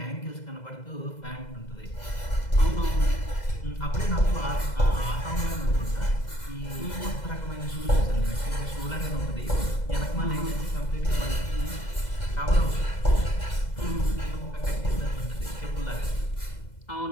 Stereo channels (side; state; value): right; late; 2.0 ms